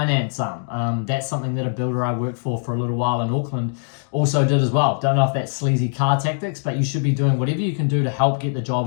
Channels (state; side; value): silent; right; digital silence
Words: That's something that a builder I worked for a little while in Auckland also did as well. Don't know if that's sleazy car tactics, but you should be doing whatever you can do to help get the